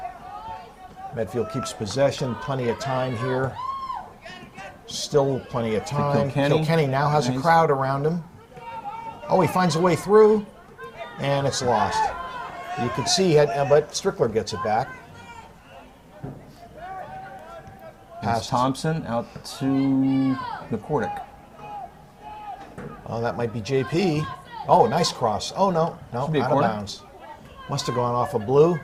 Medfield keeps possession. Plenty of time here. Still plenty of time. Kilkenny now has a crowd around him. Oh, he finds a way through, and it's lost. You can see it, but Strickler gets it back. Pass Thompson out to McCordick. Oh, that might be JP. Oh, nice cross. Oh, no, out of bounds. Must have gone off of blue.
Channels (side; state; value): both; identical; correlation 1.00